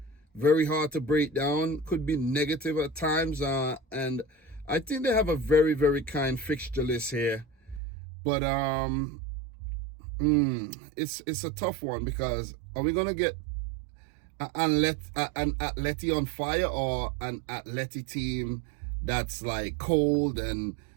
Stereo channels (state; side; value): drops out; left; at 7.8 s